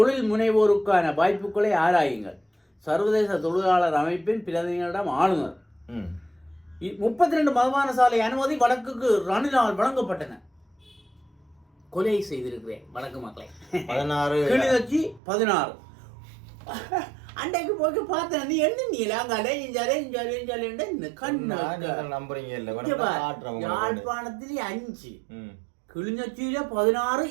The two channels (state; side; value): drops out; left; at 15.2 s